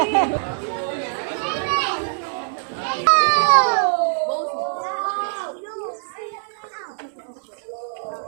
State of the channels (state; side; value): silent; left; 64 dB below the other